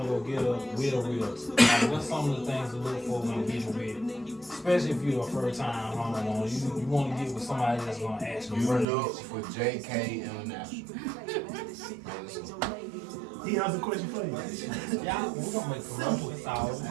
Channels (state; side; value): drops out; left; at 8.8 s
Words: to go get with a realtor. Like, what's some of the things to look for when getting with, especially if you're a first-time homeowner. You want to get with somebody that's gonna ask you. You look for JK International. He has a question for you. Yeah, we're gonna make commercials out.